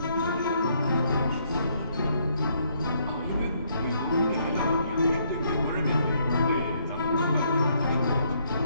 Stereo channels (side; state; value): both; inverted; correlation -0.70